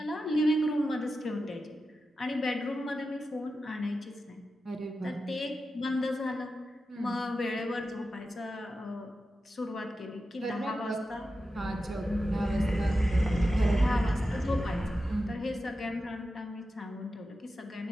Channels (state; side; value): normal; both; correlation 0.91